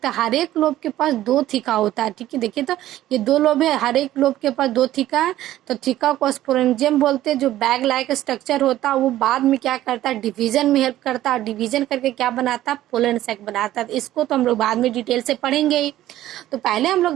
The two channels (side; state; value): left; quieter; 14.0 dB